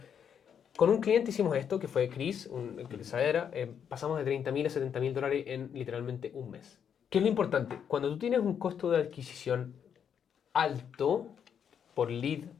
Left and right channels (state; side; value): quieter; right; 8.0 dB